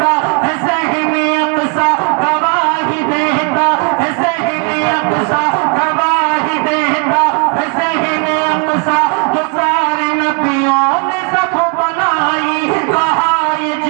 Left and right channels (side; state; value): left; quieter; 34.5 dB